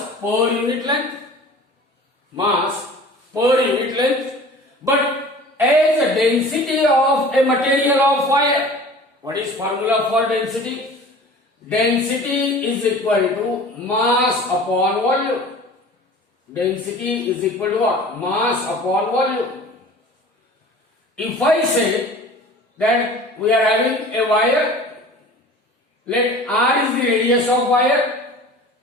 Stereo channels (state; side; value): normal; both; correlation 0.42